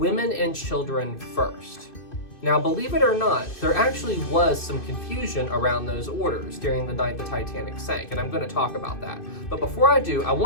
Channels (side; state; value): right; late; 2.5 ms